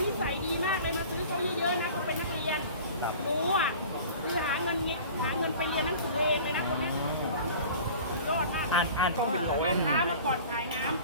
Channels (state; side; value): inverted; both; correlation -0.42